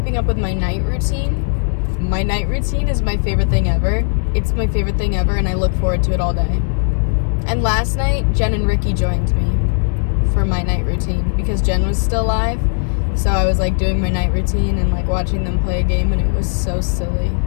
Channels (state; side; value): silent; right; 56 dB below the other